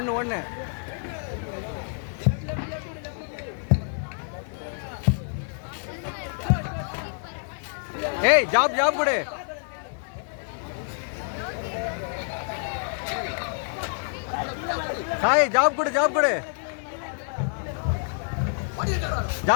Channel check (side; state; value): right; silent; 60 dB below the other